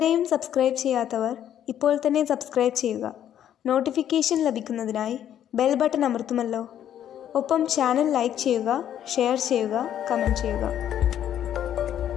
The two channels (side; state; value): right; quieter; 10.4 dB